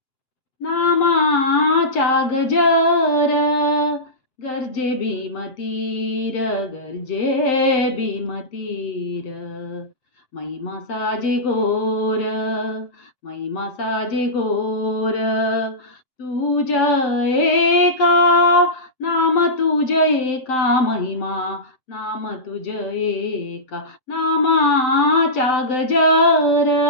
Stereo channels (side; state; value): right; late; 7.8 ms